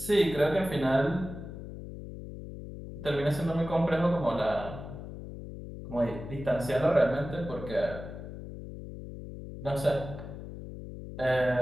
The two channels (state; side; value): noise; left; hum, 11 dB below the sound